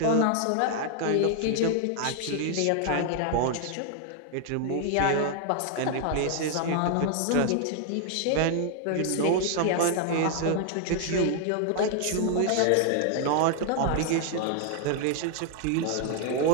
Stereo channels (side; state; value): both; different; correlation 0.00